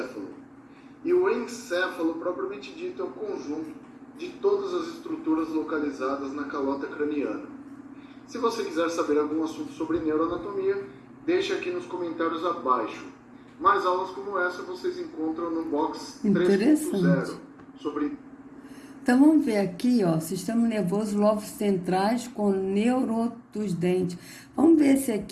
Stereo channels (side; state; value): both; identical; correlation 1.00